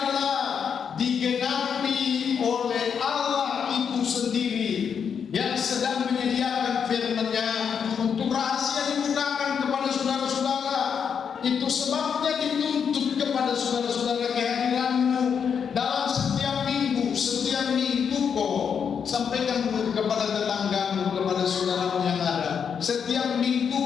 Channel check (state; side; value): quieter; right; 7.1 dB